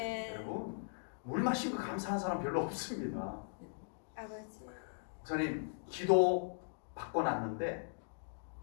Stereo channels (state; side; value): silent; right; digital silence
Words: 여러분 물 마신 거 감사한 사람 별로 없습니다. 아버지. 목사님 기도 받고 났는데